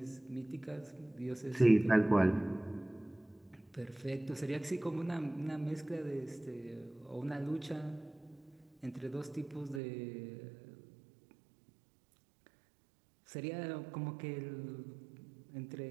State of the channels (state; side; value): drops out; left; at 9.8 s